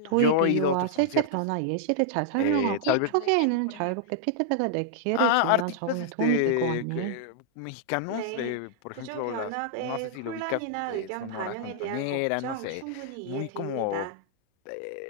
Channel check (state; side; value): different; both; correlation -0.01